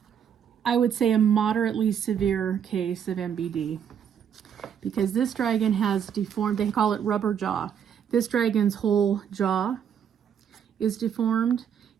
I would say, a moderately severe case of MBD, because this dragon has deformed, they call it rubber jaw. This dragon's whole jaw is deformed.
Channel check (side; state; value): left; quieter; 8.2 dB